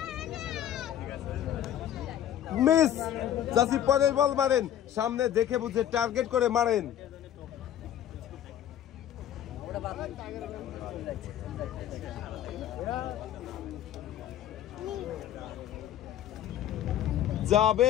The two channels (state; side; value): quieter; right; 11.1 dB